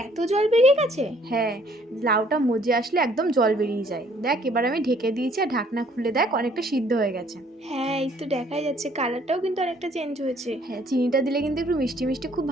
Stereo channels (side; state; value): both; normal; correlation 0.62